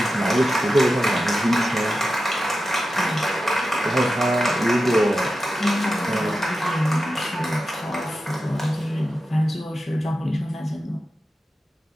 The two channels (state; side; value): normal; both; correlation 0.91